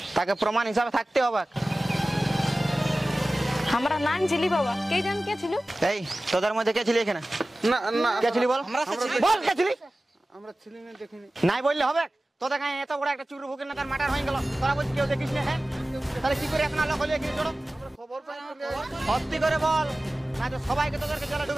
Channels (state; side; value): normal; both; correlation 0.97